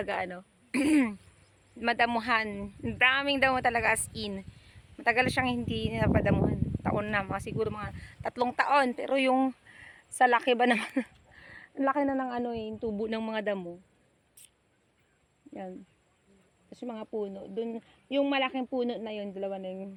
madamuhan. Daming damo talaga as in. Matagal siyang hindi napadamuhan. Taon na. Siguro mga 3 taon. Pero yung sa laki ba naman. Ang laki na ng yung tubo ng mga damo. Yan. Tapos yung mga puno. Dun, yung malaking puno na yun. Dalawa na yung.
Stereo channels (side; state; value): both; identical; correlation 1.00